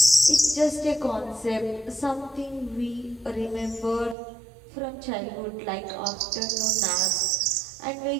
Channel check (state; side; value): drops out; left; at 4.2 s